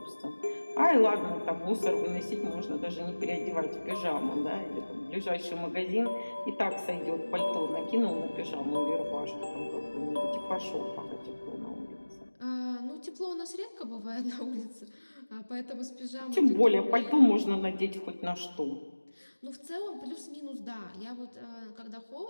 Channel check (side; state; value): both; inverted; correlation -1.00